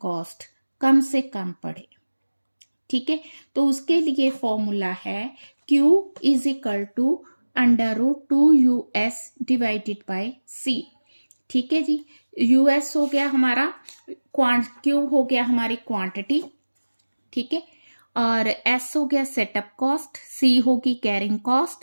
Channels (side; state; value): both; inverted; correlation -1.00